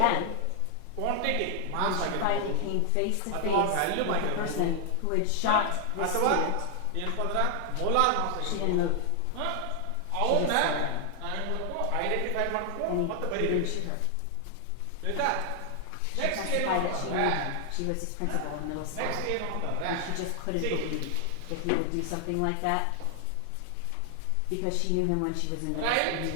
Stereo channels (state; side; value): different; both; correlation 0.00